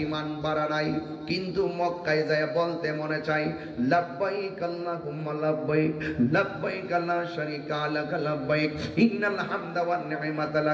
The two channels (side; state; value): both; identical; correlation 1.00